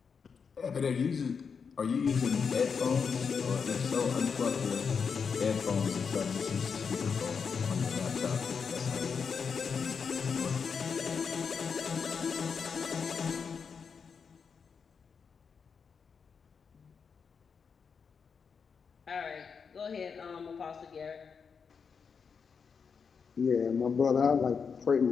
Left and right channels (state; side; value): quieter; right; 6.0 dB